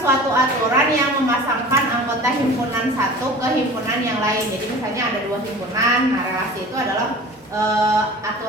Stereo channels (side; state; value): both; normal; correlation 0.40